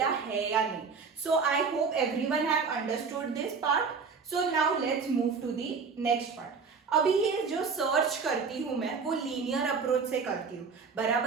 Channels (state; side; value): quieter; left; 5.2 dB